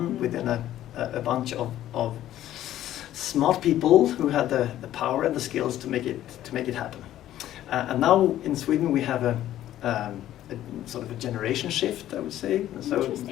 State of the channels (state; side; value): quieter; right; 12.8 dB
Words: within a bunch of smart people who had the power and the skills to make it happen. And now in Sweden we have a sort of a generation shift, I would say.